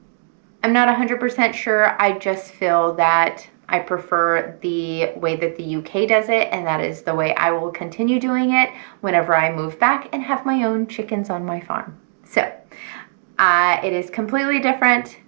not 100% sure. I just feel that I prefer the way that the UK does it, and that is the way I will continue doing it whenever I move back and have my own chickens on my farm. So it is completely different.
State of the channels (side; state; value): left; silent; digital silence